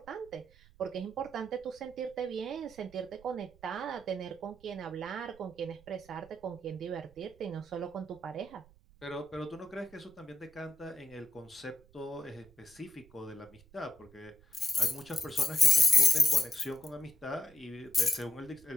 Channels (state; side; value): noise; right; rumble, 26 dB below the sound